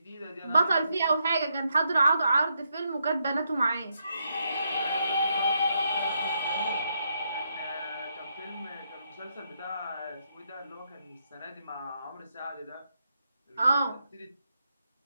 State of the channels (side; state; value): both; inverted; correlation -0.79